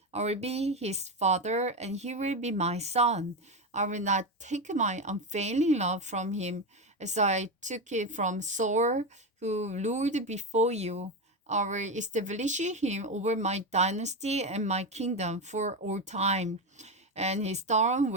I will be his father, and he will be my son. I will not take my unfailing love from him, as I took it from Saul, who ruled before you. I will establish him over my dynasty and my kingdom for all time, and his throne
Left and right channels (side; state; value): both; normal; correlation 0.14